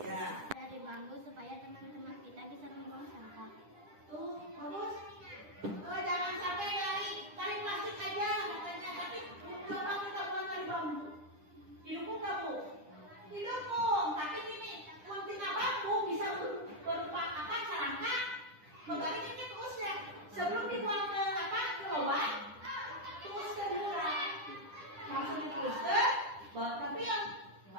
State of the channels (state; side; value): late; left; 10 ms